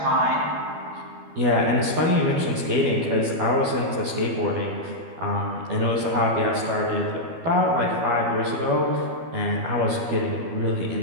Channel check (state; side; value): late; left; 12 ms